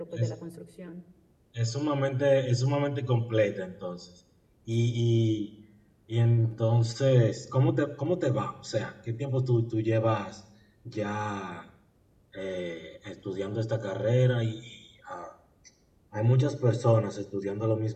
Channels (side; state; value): both; identical; correlation 1.00